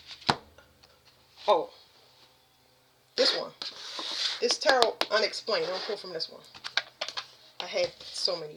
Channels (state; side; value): identical; both; correlation 1.00